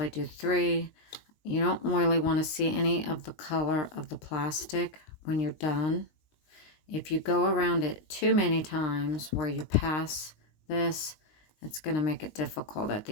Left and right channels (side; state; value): right; late; 20 ms